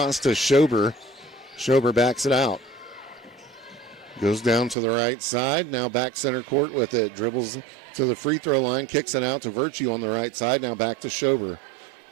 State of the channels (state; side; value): drops out; left; at 4.8 s